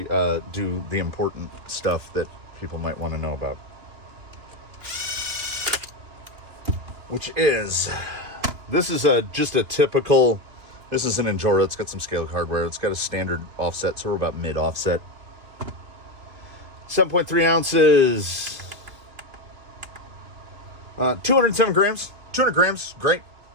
do the important stuff that people might want to know about. Which is, this is just a typical, this is an Injora. It's got some scale hardware. It's got a standard offset, so we're about mid offset. 7.3 ounces. 207 grams. 200 grams. Great.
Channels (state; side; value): late; left; 3.2 ms